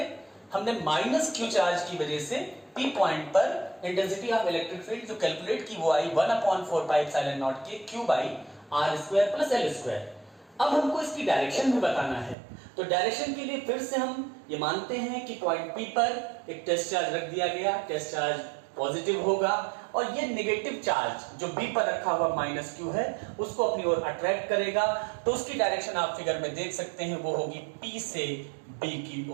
हमने माइनस क्यू चार्ज की वजह से P पॉइंट पर इंटेंसिटी ऑफ इलेक्ट्रिक फील्ड जो कैलकुलेट की वो आई 1/4 पाई एप्सिलॉन नॉट के Q by R square plus L square. अब हमको इसकी डायरेक्शन भी बताना है, तो डायरेक्शन के लिए फिर से हम ये मानते हैं कि पॉइंट P पर एक टेस्ट चार्ज रख दिया गया, टेस्ट चार्ज पॉजिटिव होगा और ये नेगेटिव चार्ज जो B पर रखा हुआ माइनस क्यू है उसको अपनी ओर अट्रैक्ट करेगा। तो उसकी डायरेक्शन आप फिगर में देख सकते हैं, वो होगी P से B की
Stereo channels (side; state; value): left; drops out; at 12.4 s